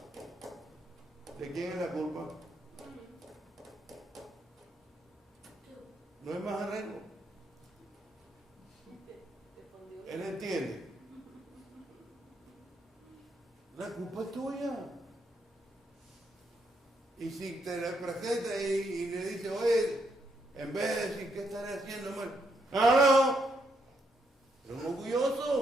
¿de quién es la culpa? No es más arreglo. Él entiende. La culpa es tuya. Y si te le presenta y le dice, oye, en vez de decir, ¿qué estaré haciendo mal? No, pero un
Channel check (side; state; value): both; normal; correlation 0.77